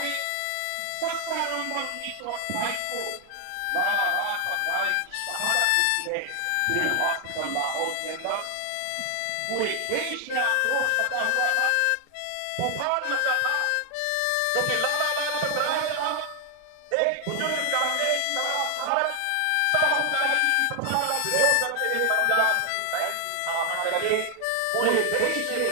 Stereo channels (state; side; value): different; both; correlation 0.00